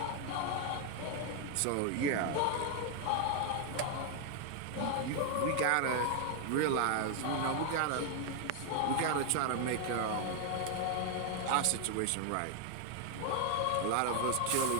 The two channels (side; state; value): both; different; correlation 0.00